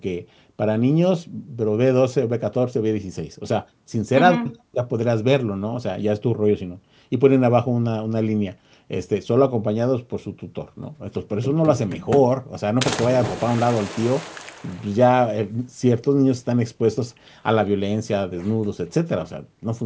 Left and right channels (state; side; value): identical; both; correlation 1.00